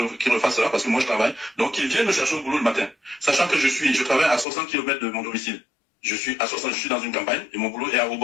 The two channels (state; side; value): drops out; right; at 4.5 s